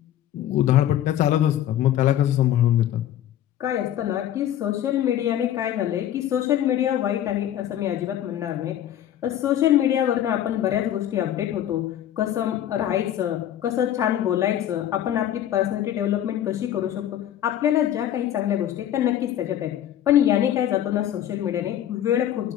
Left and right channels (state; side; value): quieter; right; 11.4 dB